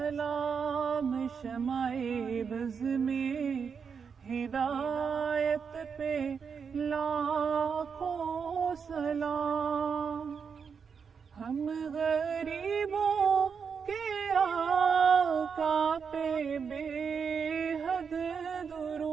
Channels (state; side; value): quieter; left; 6.2 dB